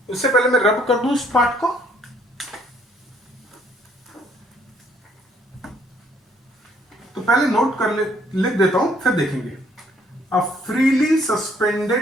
उससे पहले मैं रब कर दूं इस पार्ट को। तो पहले नोट कर लिख देता हूं, फिर देखेंगे। A freely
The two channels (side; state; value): both; normal; correlation 0.64